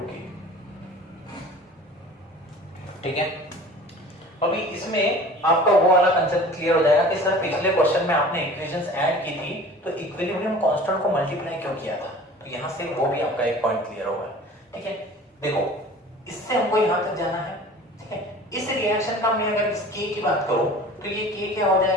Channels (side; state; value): both; normal; correlation 0.43